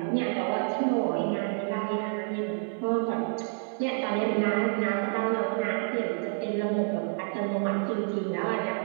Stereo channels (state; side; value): silent; left; 59 dB below the other